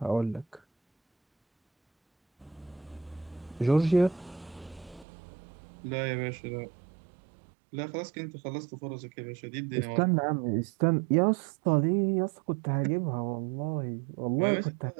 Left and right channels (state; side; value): drops out; left; at 5.1 s